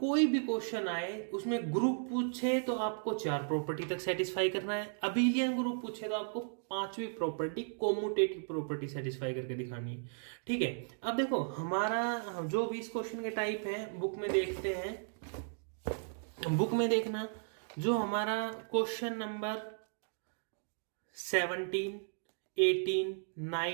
कोई भी क्वेश्चन आए उसमें ग्रुप पूछे तो आपको 4 प्रॉपर्टी तक सेटिस्फाई करना है, अबेलियन ग्रुप पूछे तो आपको 5वीं प्रॉपर्टी कोम्यूटेटिव प्रॉपर्टी सेटिस्फाई करके दिखानी है, ठीक है। अब देखो हमारा जो भी इस क्वेश्चन के टाइप है बुक में देखते हैं, बुक में देखना जो हमारा क्वेश्चन नंबर 17, 18,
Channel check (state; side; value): silent; left; digital silence